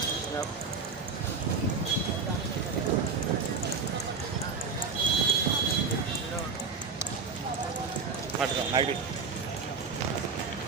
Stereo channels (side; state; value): left; quieter; 5.0 dB